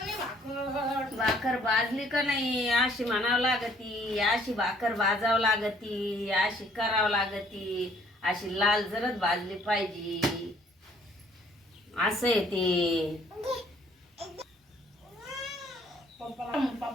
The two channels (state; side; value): normal; both; correlation 0.61